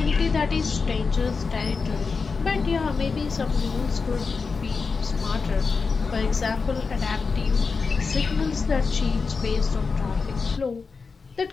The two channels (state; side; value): quieter; right; 4.8 dB